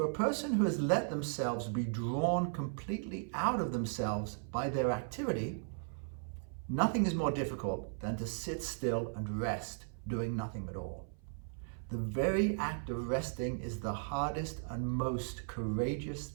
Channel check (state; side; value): silent; left; 53 dB below the other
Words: a person who has let themselves be drawn completely out of themselves by their activity, nothing is more difficult than to sit still and rest, doing nothing at all. The very act of resting is the hardest and most courageous